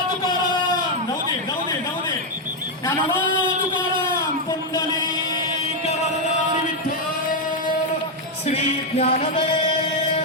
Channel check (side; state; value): both; normal; correlation 0.02